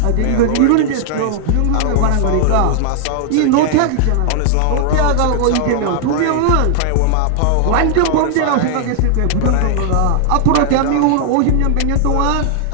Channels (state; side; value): different; both; correlation -0.01